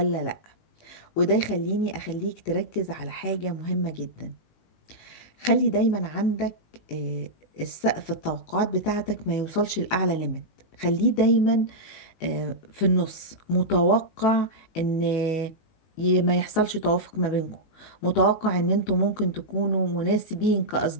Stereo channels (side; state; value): right; late; 19 ms